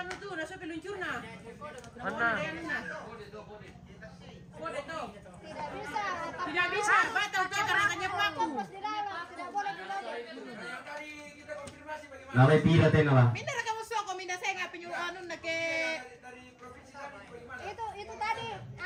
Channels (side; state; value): both; identical; correlation 1.00